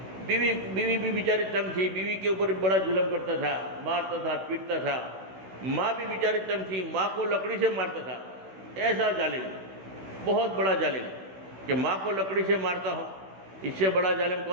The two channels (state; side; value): late; left; 16 ms